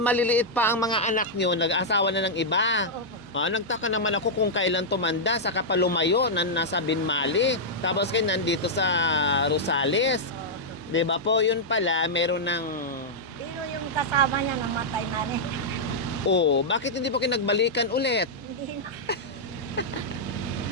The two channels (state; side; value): normal; both; correlation -0.07